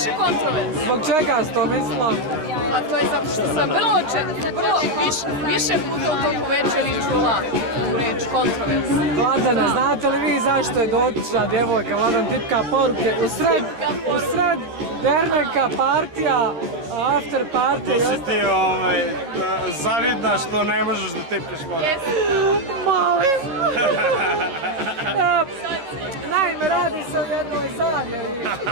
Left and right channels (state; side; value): late; left; 13 ms